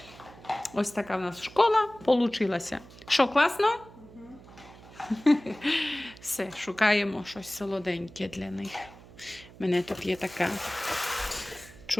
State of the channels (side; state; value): right; noise; hum, 20 dB below the sound